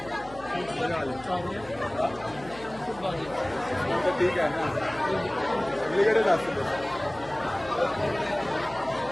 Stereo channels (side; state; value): left; noise; hum, 20 dB below the sound